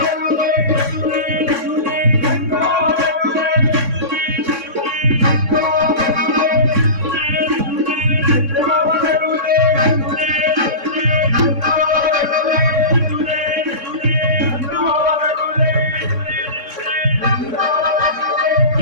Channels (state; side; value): late; left; 3.6 ms